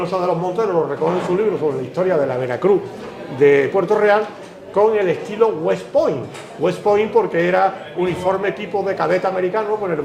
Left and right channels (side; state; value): both; identical; correlation 1.00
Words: de los Monteros lo recoge en su libro sobre la historia de la Veracruz de Puerto Real, con el estilo West Point. West Point porque era uniforme tipo de cadete americano con el